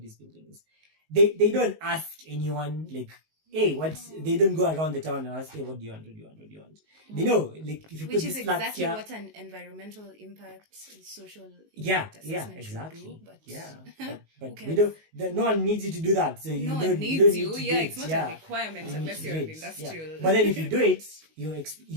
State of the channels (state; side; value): late; left; 19 ms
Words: these buildings. They don't ask anyone, like, hey, what? They don't go around the town and ask, hey, what do you want? They know, like, if you Which put is this flat exactly here, what an environmental impact, social yeah, assessment exactly. should do. But but okay. we don't. No one needs you to do that. So you no don't, one needs you. Don't you. need to Yeah, do it's it. not Yeah. a requirement You need unless to you're do an it. industrial. Yeah. But then if you do it,